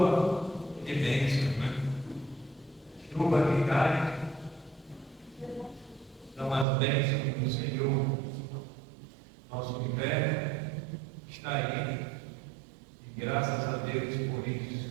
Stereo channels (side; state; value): left; drops out; at 6.7 s